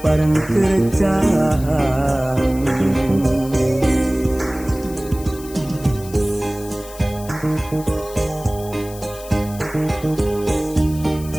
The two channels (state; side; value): noise; left; hiss, 17 dB below the sound